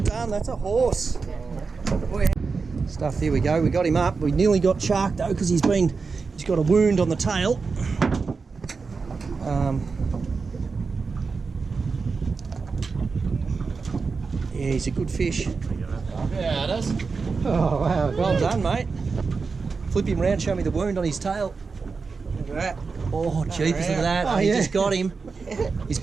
done. That's a horse. Stuff. Here we go. We got him up. We nearly got shark though because he's got a wound on the tail. Yeah, he's a good fish. Yeah, it is. Oh wow! Well done, mate. Flip him round, show me the wound on his tail. Look at that. Oh, jeepers, look at that. Oh, He yeah. just got him. He's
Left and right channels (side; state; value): left; quieter; 4.7 dB